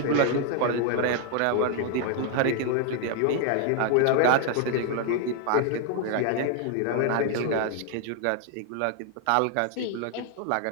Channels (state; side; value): different; both; correlation 0.00